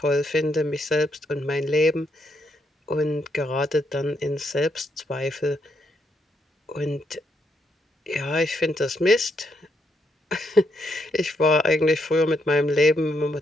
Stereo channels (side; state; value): both; normal; correlation 0.77